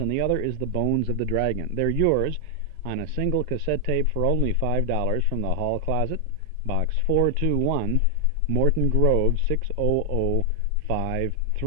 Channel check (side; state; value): both; different; correlation 0.00